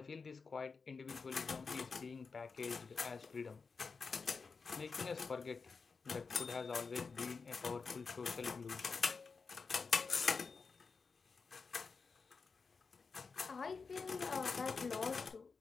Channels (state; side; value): quieter; right; 4.8 dB